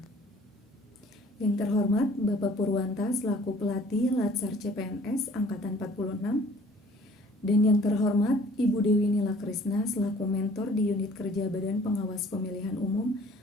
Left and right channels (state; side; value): normal; both; correlation 0.54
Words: Yang terhormat Bapak Purwanta selaku pelatih Latsar CPNS Angkatan 46, dan yang terhormat Ibu Dewi Nila Krisna selaku mentor di unit kerja Badan Pengawas Pemilihan Umum